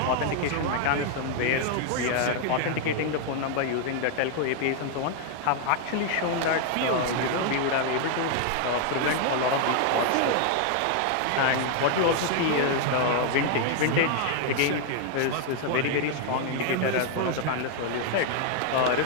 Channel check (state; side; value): different; both; correlation 0.00